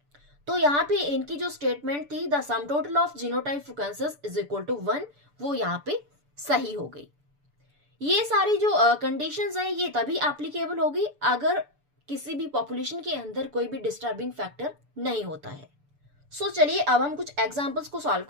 तो यहाँ पे इनकी जो स्टेटमेंट थी the sum total of genotype frequencies is equal to 1, वो यहाँ पे सही हो गई। ये सारी जो कंडीशंस है ये तभी एप्लीकेबल होगी अगर किसी भी पॉपुलेशन के अंदर कोई भी डिस्टर्बिंग फैक्टर नहीं होता है। चलिए अब हम कुछ एग्जांपल्स को सॉल्व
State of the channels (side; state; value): left; late; 6.9 ms